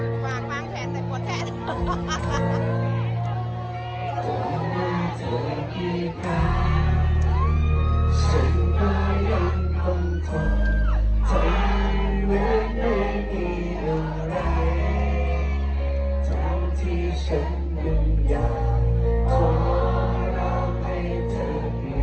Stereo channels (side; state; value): both; identical; correlation 1.00